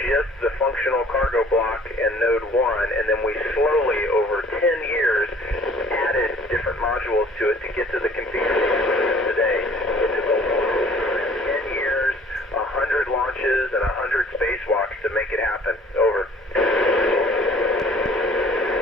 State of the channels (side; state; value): both; normal; correlation 0.54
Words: the functional cargo block and node 1, and then we slowly, over 10 years, added different modules to it to get to the configuration today. It took a long time, 10 years, 100 launches, and 100 spacewalks to make it happen. Over.